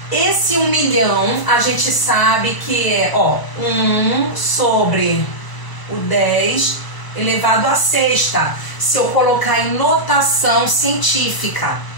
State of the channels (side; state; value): right; late; 1.0 ms